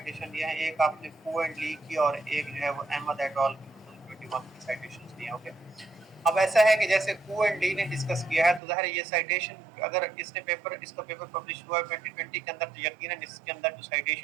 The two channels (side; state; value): left; drops out; at 8.6 s